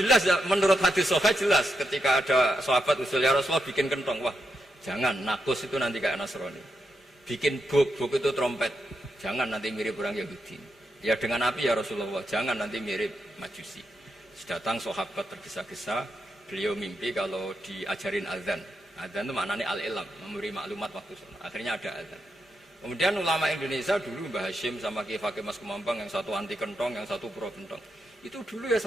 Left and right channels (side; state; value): both; normal; correlation 0.84